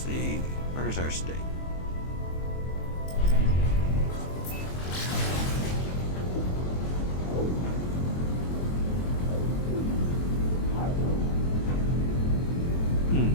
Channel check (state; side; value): late; right; 23 ms